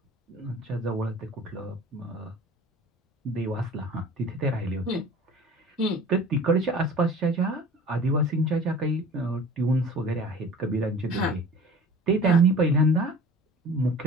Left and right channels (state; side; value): normal; both; correlation 0.43